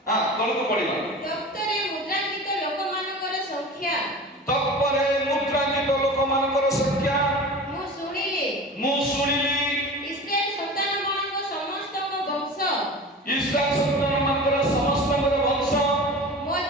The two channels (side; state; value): both; normal; correlation 0.35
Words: हां तळको पडिबा डॉक्टरे मुद्रांकित लोक मानकर संख्या तत्परे मुद्रांकित लोक मानकर संख्या मु सुनिली इस्राएल संतान मानक समस्त को वंश इस्राएल संतान मानकर समस्त वंश